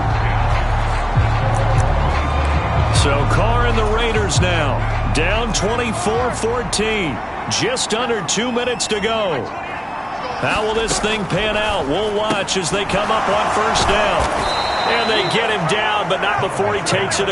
So Carr and the Raiders now down 24-14. Just under 2 minutes to go. How will this thing pan out? We'll watch as they come up on first down. And they get him down, but not before he takes it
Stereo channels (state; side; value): identical; both; correlation 1.00